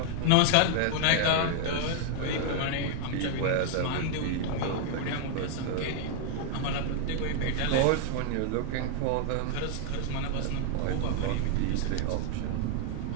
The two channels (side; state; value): both; different; correlation 0.00